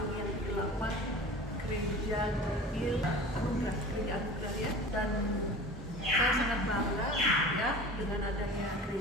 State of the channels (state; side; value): normal; both; correlation 0.38